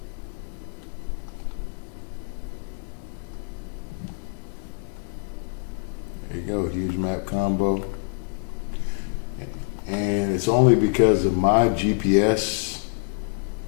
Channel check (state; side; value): silent; right; 61 dB below the other